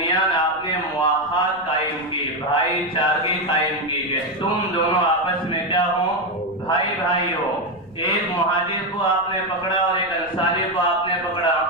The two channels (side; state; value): left; noise; rumble, 27 dB below the sound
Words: آپ نے مواخات قائم کی، بھائی چارگی قائم کی کہ تم دونوں آپس میں کیا ہو، بھائی بھائی ہو. ایک مہاجر کو آپ نے پکڑا اور ایک انصاری کو آپ نے پکڑا